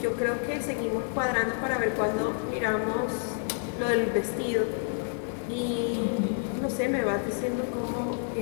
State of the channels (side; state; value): right; silent; 59 dB below the other